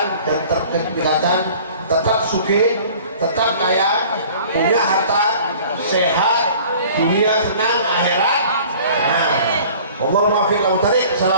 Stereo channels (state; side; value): inverted; both; correlation -0.48